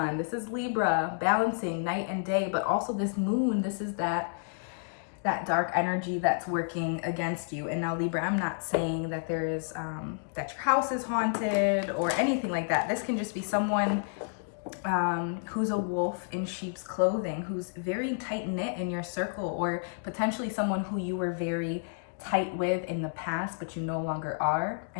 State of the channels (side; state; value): right; silent; digital silence